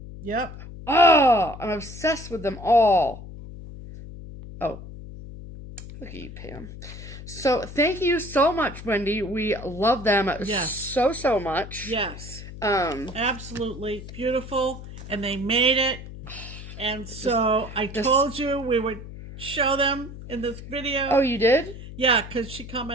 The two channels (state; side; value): noise; left; hum, 13 dB below the sound